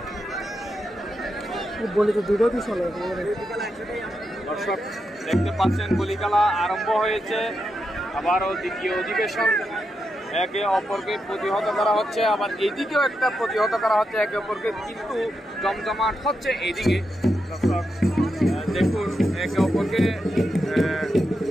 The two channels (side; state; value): both; normal; correlation 0.86